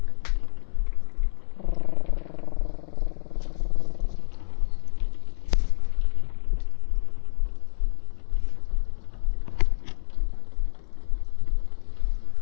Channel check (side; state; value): right; silent; 61 dB below the other